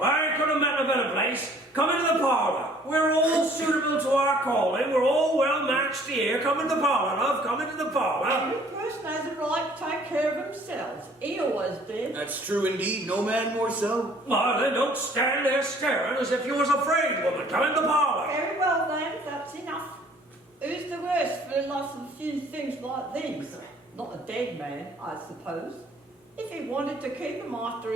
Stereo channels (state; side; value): normal; both; correlation 0.56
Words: I could have met a better place. Come into the parlor. We're all suitable to our calling. We're all well matched here. Come into the parlor, love. Come into the parlor. Every person has a right to take care of themselves. He always did. That's true indeed. No man more so. Well, then don't stand there staring as if you was afraid, woman. Come into the parlor. Very well then, that's enough. Who's the worse for the loss of a few things like these? Not a dead man, I suppose. If he wanted to keep him after